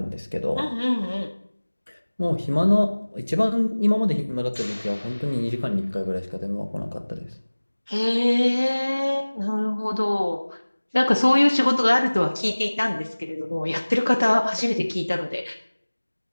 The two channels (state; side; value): inverted; both; correlation -1.00